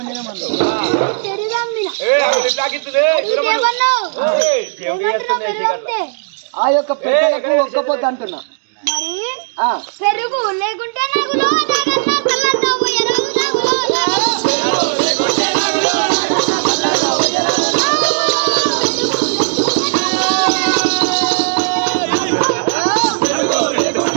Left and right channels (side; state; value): left; silent; digital silence